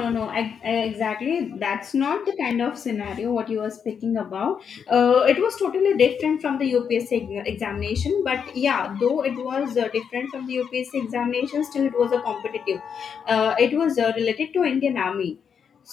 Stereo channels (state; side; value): quieter; right; 7.1 dB